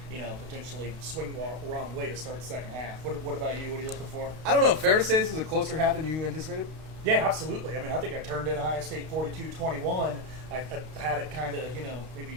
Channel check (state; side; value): late; left; 32 ms